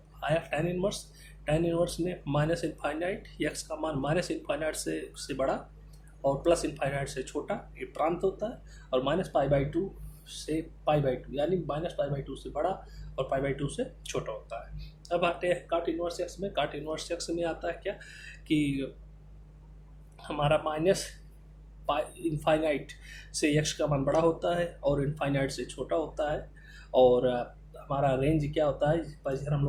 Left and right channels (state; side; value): identical; both; correlation 1.00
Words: आया टेन इनवर्स में -∞, एक्स का मान -∞ से बड़ा और +∞ से छोटा, ये प्रांत होता है। और -π/2 से π/2 यानी -π/2 से बड़ा और π/2 से छोटा होता है। अब आते हैं काट इनवर्स एक्स में। काट इनवर्स एक्स में आता है क्या कि हमारा -∞ से x का मान बड़ा होता है और इनफाइनाइट से छोटा होता है। और हमारा रेंज क्या होता है, इधर हम